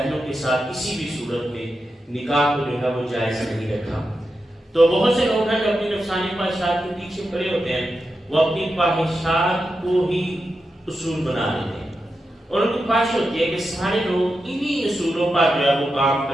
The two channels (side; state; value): both; normal; correlation 0.89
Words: کے ساتھ کسی بھی صورت میں نکاح کو جو ہے وہ جائز نہیں رکھا۔ تو بہت سے لوگ ہیں جو اپنی نفسانی خواہشات کے پیچھے پڑے ہوتے ہیں، وہ اپنی خواہشات کو ہی اصول بنا لیتے ہیں، اور ان کی خواہش ہوتی ہے کہ سارے لوگ انہی اصولوں پر جو ہے وہ کام